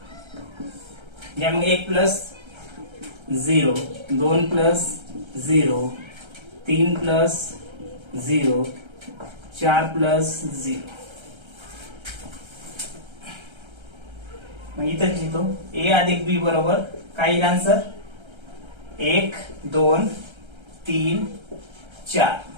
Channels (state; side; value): late; left; 1.3 ms